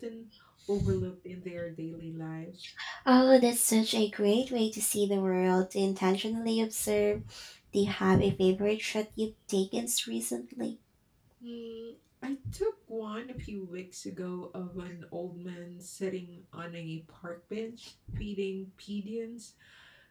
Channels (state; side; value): identical; both; correlation 1.00